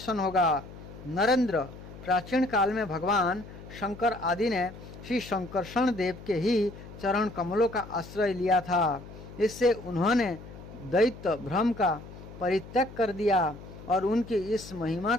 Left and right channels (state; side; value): noise; left; hum, 15 dB below the sound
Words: होगा। नरेंद्र, प्राचीन काल में भगवान शंकर आदि ने श्री शंकरषण देव के ही चरण कमलों का आश्रय लिया था। इससे उन्होंने दैत्य भ्रम का परित्याग कर दिया और उनकी इस महिमा